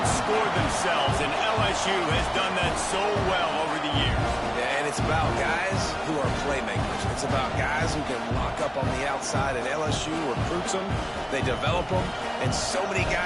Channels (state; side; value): identical; both; correlation 1.00